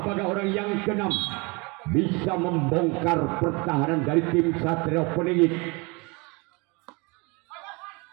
Apakah orang yang keenam bisa membongkar pertahanan dari tim Satrio Peningit?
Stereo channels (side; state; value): left; quieter; 28.1 dB